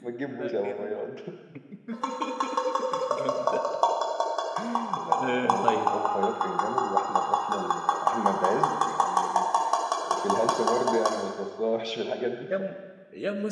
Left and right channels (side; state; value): both; identical; correlation 1.00